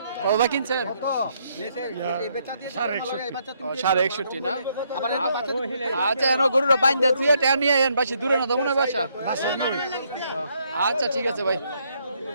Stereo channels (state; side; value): inverted; both; correlation -0.73